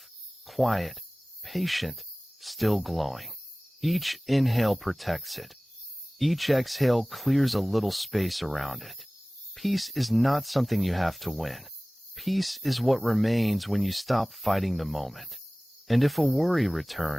quiet, patient, still glowing. Each inhale protects it. Each exhale clears a little space around it. Peace is not something you have to win. Peace is what remains when you stop fighting the moment. And if a worry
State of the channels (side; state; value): both; normal; correlation 0.98